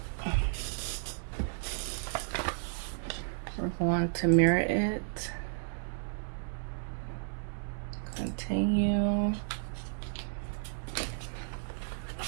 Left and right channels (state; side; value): silent; left; digital silence